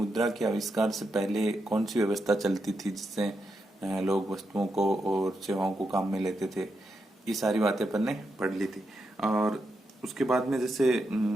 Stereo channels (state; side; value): normal; both; correlation 0.85